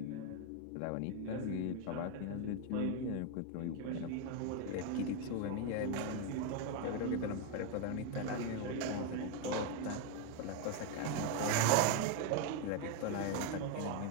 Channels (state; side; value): different; both; correlation 0.01